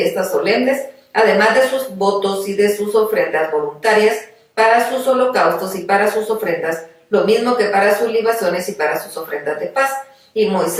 solemnes, además de sus votos y de sus ofrendas voluntarias, para sus holocaustos y para sus ofrendas, lo mismo que para sus libaciones y para sus ofrendas de paz. Y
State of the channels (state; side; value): identical; both; correlation 1.00